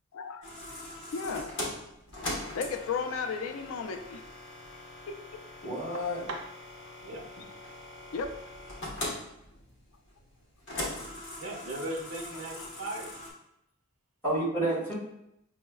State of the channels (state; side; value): normal; both; correlation 0.07